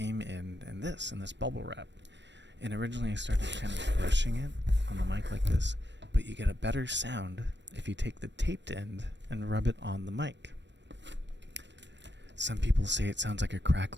in this bubble wrap. And originally I started kind of brushing it on the mic like this, but you get a better sound if you take the taped end and rub it on the mic. Some people say it sounds like a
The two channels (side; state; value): left; late; 0.52 ms